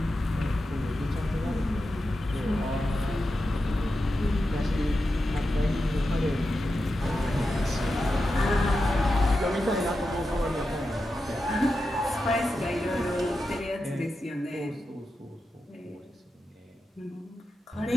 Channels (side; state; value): both; normal; correlation 0.90